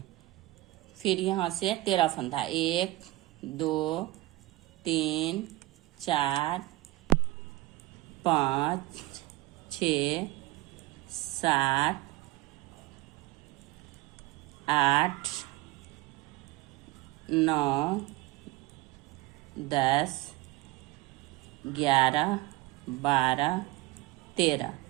फिर यहाँ से 13 फंदा, 1 2 3 4 5 6 7 8 9 10 11 12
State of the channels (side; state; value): left; quieter; 19.3 dB